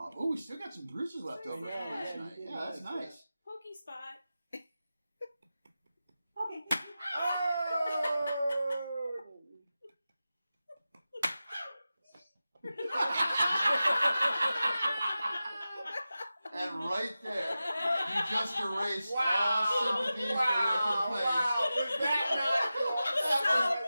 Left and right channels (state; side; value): inverted; both; correlation -0.94